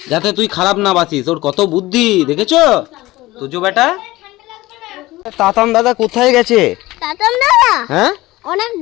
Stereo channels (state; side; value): quieter; right; 18.5 dB